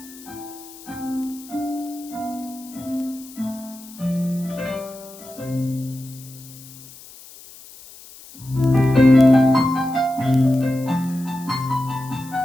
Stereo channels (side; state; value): left; noise; hiss, 19 dB below the sound